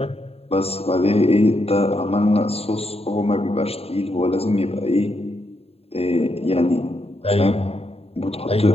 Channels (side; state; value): right; late; 0.29 ms